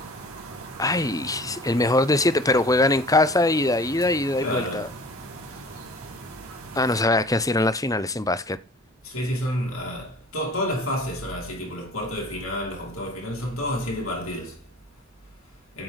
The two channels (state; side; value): normal; both; correlation 0.45